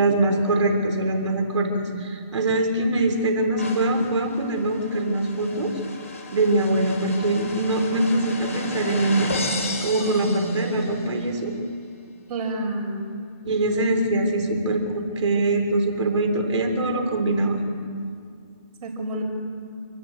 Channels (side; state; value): both; inverted; correlation -0.59